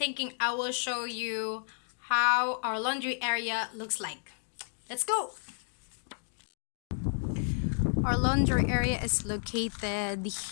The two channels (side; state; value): right; silent; digital silence